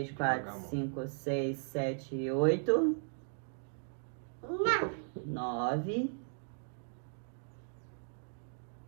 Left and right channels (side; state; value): left; silent; digital silence